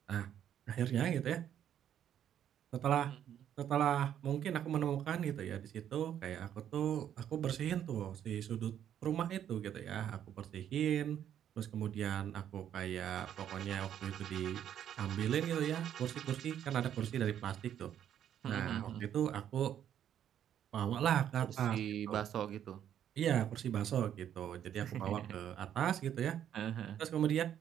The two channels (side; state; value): left; quieter; 10.0 dB